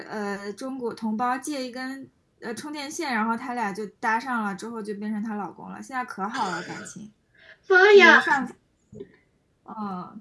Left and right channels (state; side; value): identical; both; correlation 1.00